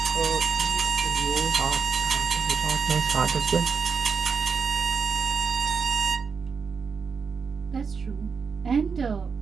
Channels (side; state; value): left; quieter; 5.8 dB